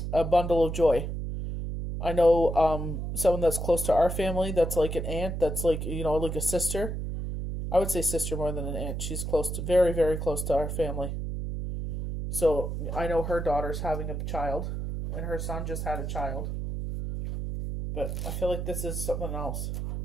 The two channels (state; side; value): noise; right; hum, 4 dB below the sound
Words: bundle of joy. I know someone that's close to our family, that's like an aunt, that's like, like a sister. I would say sister more than an aunt. She's close to, very, very close to our family. So I know her daughter's having a child, and her son just had a child. But I feel like this is something else.